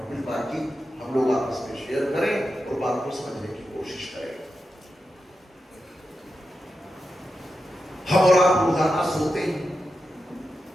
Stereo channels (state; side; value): normal; both; correlation 0.89